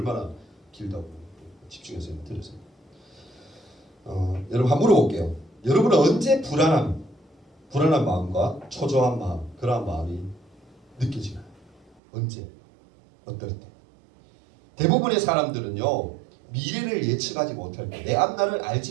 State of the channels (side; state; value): left; drops out; at 12.0 s